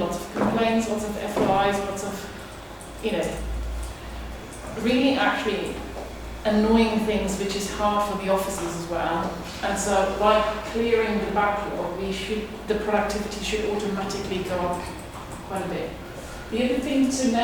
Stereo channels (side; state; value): both; identical; correlation 1.00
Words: of complaints, lots of FOIs, lots of really actually annoying things, which is hard for the officers as well. And so by clearing the backlog, the productivity should automatically go up quite a bit. The other thing to